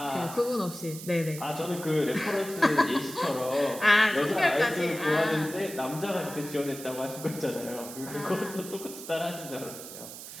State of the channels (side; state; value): right; noise; hiss, 12 dB below the sound